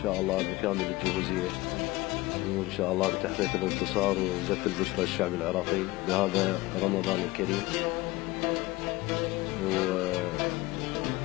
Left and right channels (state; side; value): quieter; right; 20.1 dB